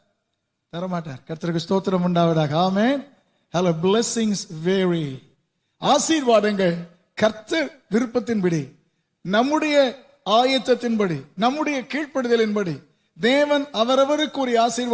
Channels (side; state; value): both; identical; correlation 1.00